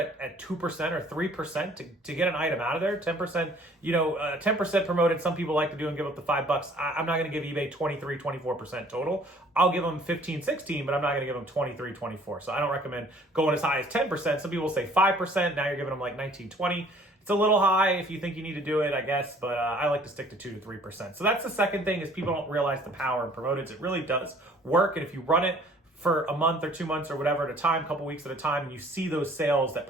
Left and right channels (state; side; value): normal; both; correlation 0.55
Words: at 2% or 3% to get an item out of there. 10%, 10% promoted. Some people like to do and give up the $5. I'm not going to give eBay 23, 24% total. I'll give them 15, 16, but I'm not going to give them 23, 24. So I don't recommend going as high as 10%. Some people say 5%. Now you're giving them like 19, 20. It's a little high if you think you need to do it, I guess, but I like to stick to 2 to 3%. So that's the second thing, is people don't realize the power in promoteds. It really does work, and if you run it for a month or 2 months or whatever at a time, a couple weeks at a time, and you see those sales that